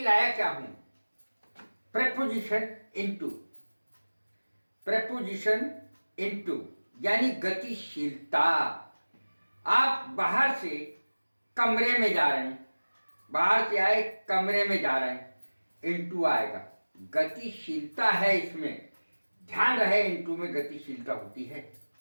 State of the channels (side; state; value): both; inverted; correlation -1.00